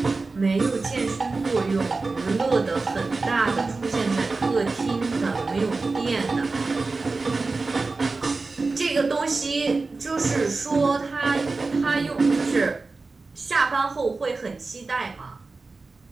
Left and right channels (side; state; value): left; quieter; 3.8 dB